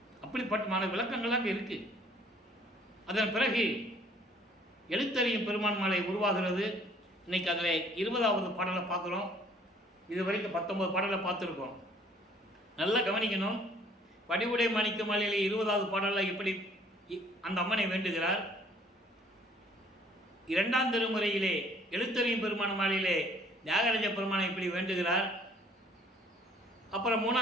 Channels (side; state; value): both; normal; correlation 0.57